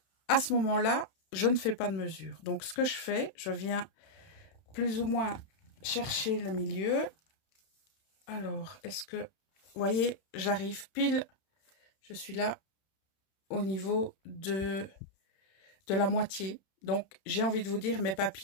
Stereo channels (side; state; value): right; late; 31 ms